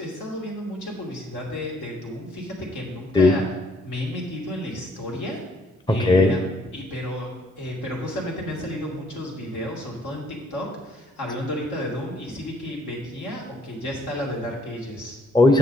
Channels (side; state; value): both; normal; correlation 0.67